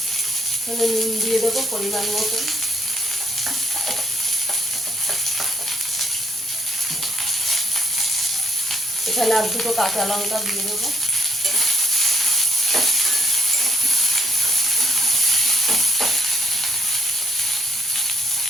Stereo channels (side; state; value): both; normal; correlation 0.72